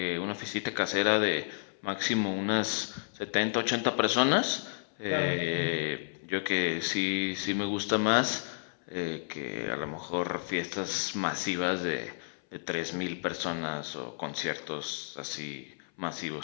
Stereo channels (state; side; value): silent; right; 57 dB below the other